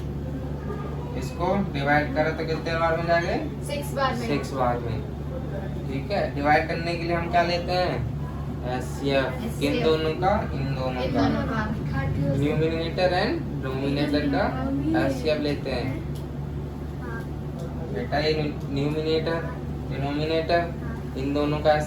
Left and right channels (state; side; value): identical; both; correlation 1.00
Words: इसको डिवाइड करो तो कितने बार में जाएंगे? 6 बार में। ठीक है, डिवाइड करने के लिए हम क्या लेते हैं? एचसीएफ। किन दोनों का? इन दोनों का। न्यूमिनेटर एंड डिनोमिनेटर का एचसीएफ लेते हैं। बेटा ये न्यूमिनेटर डिनोमिनेटर इन दोनों का